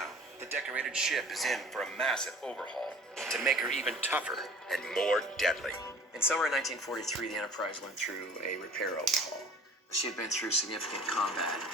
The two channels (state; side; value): normal; both; correlation 0.46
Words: the decorated ship is in for a massive overhaul to make her even tougher and more deadly. In summer 1943, the Enterprise went through a repair overhaul. She had been through significant combat